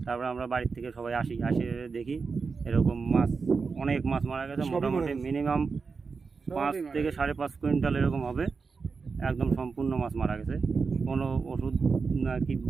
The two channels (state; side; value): quieter; left; 4.9 dB